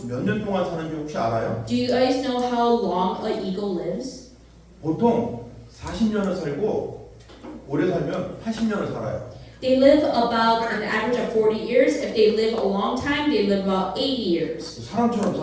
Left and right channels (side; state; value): both; identical; correlation 1.00